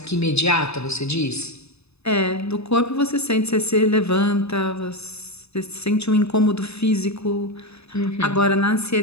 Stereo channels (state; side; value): late; right; 0.79 ms